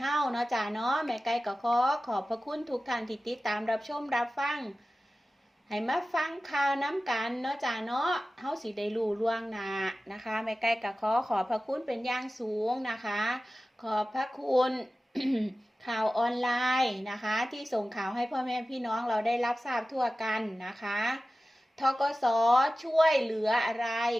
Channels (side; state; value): both; normal; correlation 0.95